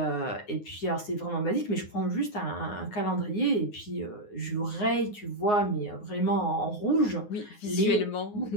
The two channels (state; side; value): late; right; 9.6 ms